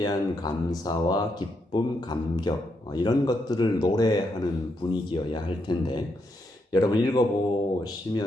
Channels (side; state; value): both; normal; correlation 0.80